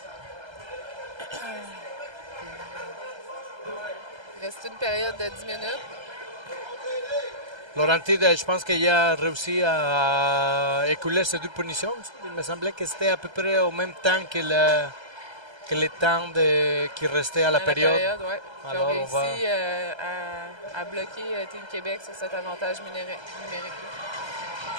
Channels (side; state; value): left; late; 1.3 ms